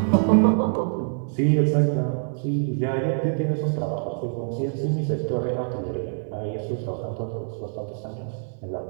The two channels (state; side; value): silent; left; digital silence